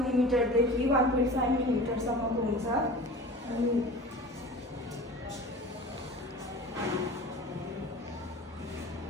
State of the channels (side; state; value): both; normal; correlation 0.38